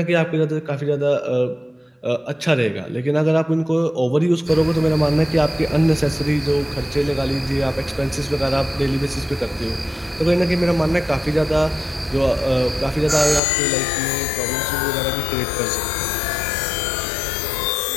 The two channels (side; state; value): right; drops out; at 13.4 s